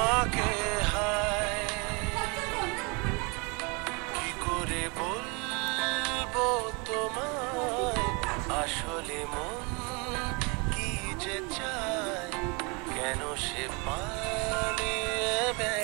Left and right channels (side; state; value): left; quieter; 30.6 dB